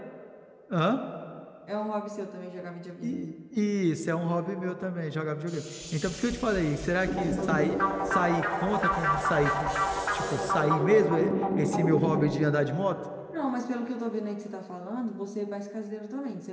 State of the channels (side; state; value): both; identical; correlation 1.00